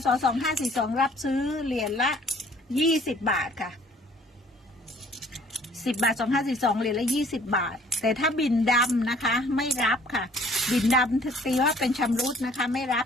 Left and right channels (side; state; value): both; normal; correlation 0.57